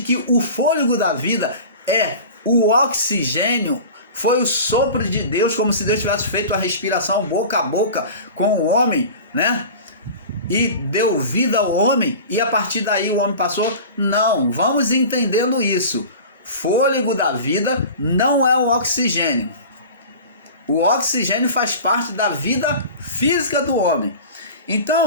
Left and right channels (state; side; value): inverted; both; correlation -0.36